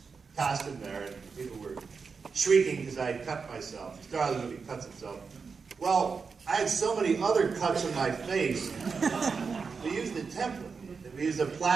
costume there, and people were shrieking because I had cut myself. The star of the movie cuts himself. Well, I had so many other cuts on my face. We used a template. We used a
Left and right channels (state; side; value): quieter; left; 5.2 dB